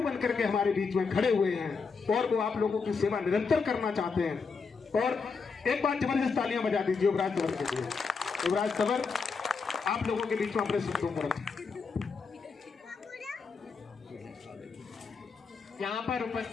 बनकर के हमारे बीच में खड़े हुए हैं और वो आप लोगों की सेवा निरंतर करना चाहते हैं। और एक बार जबरदस्त तालियां बजा दीजिए युवराज तंवर के लिए। युवराज तंवर आप लोगों के बीच में अपने शब्दों को रखें। यहाँ पर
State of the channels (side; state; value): right; quieter; 5.0 dB